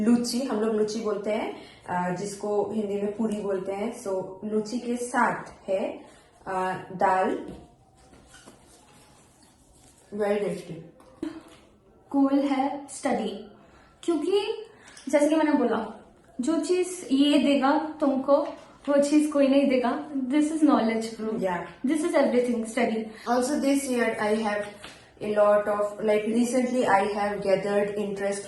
हम लोग लूची बोलते हैं, जिसको हिंदी में पूरी बोलते हैं। सो लूची के साथ है दाल, वेरी टेस्टी। गोल है स्टडी, क्योंकि जैसे कि मैंने बोला, जो चीज ये देगा तुमको वो चीज कोई नहीं देगा। This is knowledge bro, Yeah. This is everything study. Also this year I have a lot of, like recently I have gathered interest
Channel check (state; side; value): identical; both; correlation 1.00